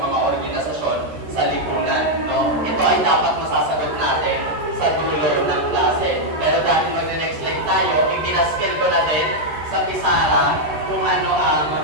organisasyon sa lipunan, no? Ito ay dapat masasagot natin sa dulo ng klase. Pero dahil mag-next slide tayo, ipinaskill ko na din sa Pisara kung ano ang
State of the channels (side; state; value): left; late; 13 ms